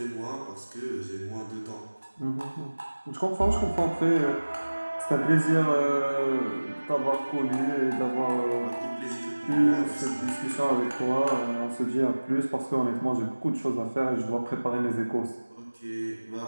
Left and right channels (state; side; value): inverted; both; correlation -1.00